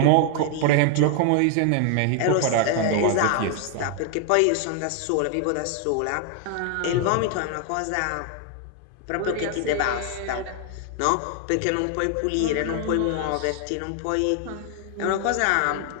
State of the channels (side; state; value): both; different; correlation 0.00